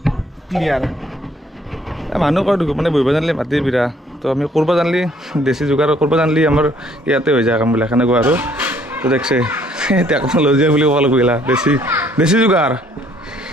ক্লিয়াৰ মানুহ কয় মানে বহিব জানিলে মাটি বিৰা তো আমি কৰিব জানিলে দেশী যোগাৰ কৰিব জানিলে আমাৰ ইয়াতে হৈ যায় কামবিলাক সেনেকুৱা আৰু তো দেখছে টেকন'লজি বুলি ক'ব লাগিব দেশী যোগাৰ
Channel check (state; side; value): normal; both; correlation 0.63